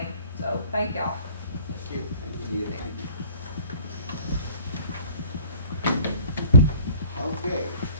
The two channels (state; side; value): inverted; both; correlation -0.50